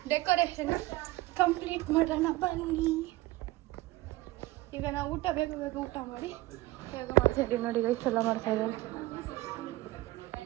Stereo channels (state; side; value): quieter; left; 18.0 dB